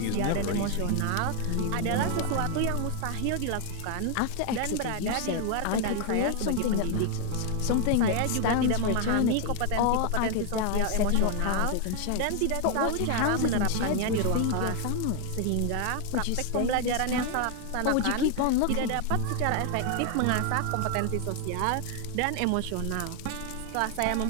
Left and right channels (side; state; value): both; different; correlation 0.00